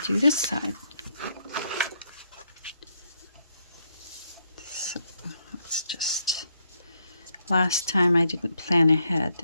this side. So let's just, last time I didn't plan ahead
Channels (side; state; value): both; inverted; correlation -0.76